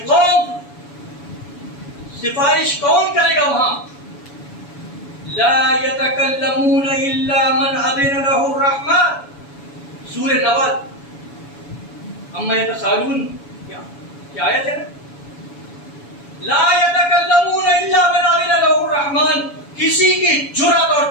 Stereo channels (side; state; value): right; late; 7.1 ms